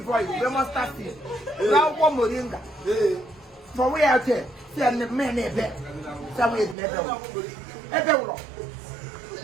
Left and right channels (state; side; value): drops out; left; at 6.8 s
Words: you we must start it akwụkwọ moringa for we out there see a man ebe somewhere in ebe ụlọ